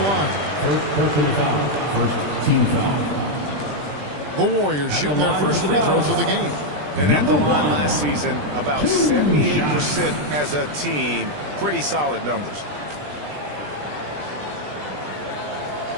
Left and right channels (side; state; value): left; late; 20 ms